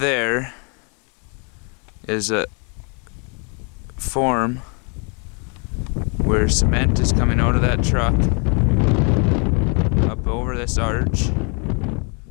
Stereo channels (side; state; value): right; quieter; 36.6 dB